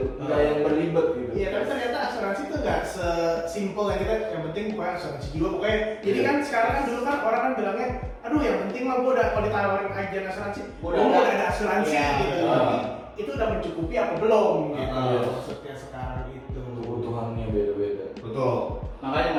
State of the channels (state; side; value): identical; both; correlation 1.00